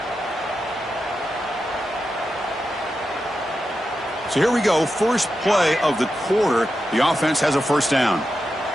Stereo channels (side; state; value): both; normal; correlation 0.89